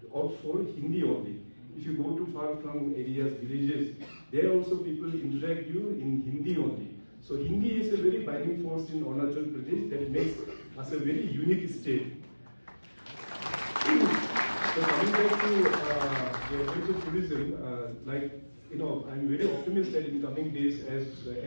opt for Hindi only. If you go to far-flung areas, villages, there also people interact you in Hindi only. So Hindi is a very binding force in Arunachal Pradesh that makes us a very unique state. So coming back to the adventure tourism, I'm very optimistic that in coming days, as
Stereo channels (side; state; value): both; inverted; correlation -1.00